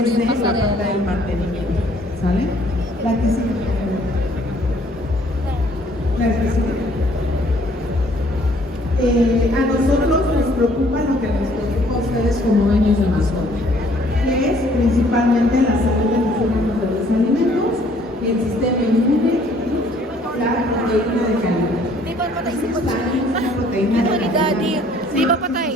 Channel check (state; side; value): normal; both; correlation 0.60